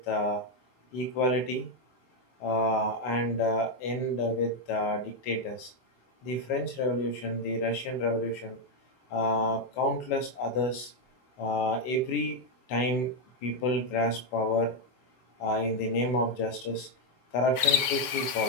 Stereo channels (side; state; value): right; late; 3.5 ms